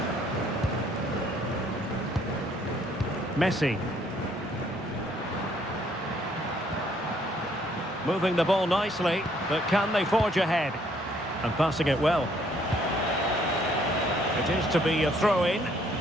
Messi. Moving the ball nicely, but can they forge ahead? And passing it well. It is to be a throw-in.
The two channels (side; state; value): both; normal; correlation 0.65